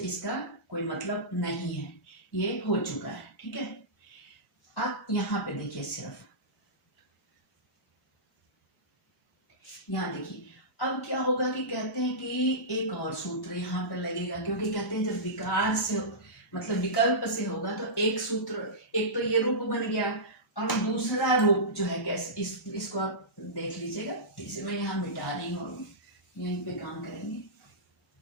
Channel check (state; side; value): normal; both; correlation -0.17